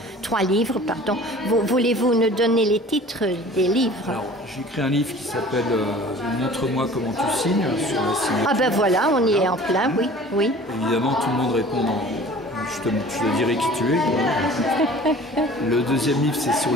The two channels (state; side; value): normal; both; correlation 0.45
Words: 3 livres, pardon. Voulez-vous nous donner les titres des livres? Alors, j'ai écrit un livre qui s'appelle Montre-moi comment tu signes sur la signature. Ah ben voilà, on y est en plein, oui. Évidemment, tout le monde répond je te dirai qui tu es. Le deuxième livre, c'est sur